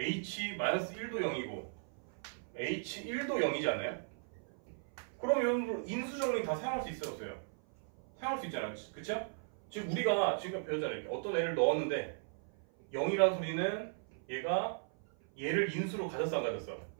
0이고 h1도 0이지 않나요? 그럼 여러분들 인수정리 다 사용할 수 있어요, 없어요? 사용할 수 있잖아요, 그쵸? 지금 우리가 지금 배웠잖아요. 어떤 애를 넣었는데 0이라는 소리는 얘가 얘를 인수로 가졌어, 안 가졌어?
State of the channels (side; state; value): left; silent; 53 dB below the other